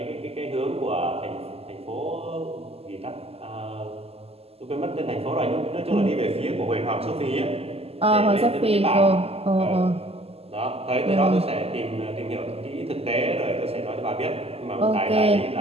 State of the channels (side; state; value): left; late; 0.29 ms